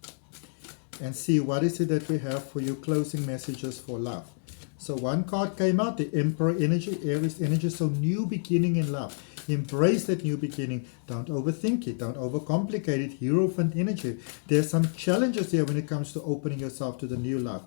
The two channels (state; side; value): silent; right; digital silence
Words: And see what is it that we have for you, closing messages for love. So one card came out, the Emperor energy, Aries energy. So new beginning in love. Embrace that new beginning. Don't overthink it. Don't overcomplicate it. Hierophant energy. There's some challenges here when it comes to opening yourself to the new love.